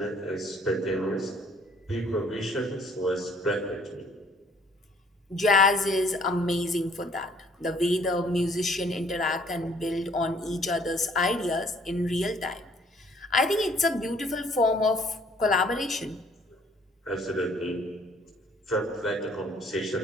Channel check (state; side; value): normal; both; correlation 0.60